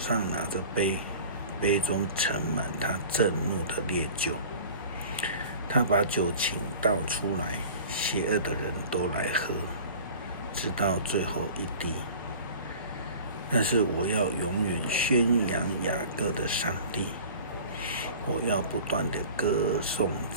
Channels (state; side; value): inverted; both; correlation -0.42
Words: 拿着杯，杯中盛满他震怒的烈酒。他把酒倾倒出来，邪恶的人都来喝，直到最后一滴。但是我要永远宣扬雅各的上帝，我要不断的歌颂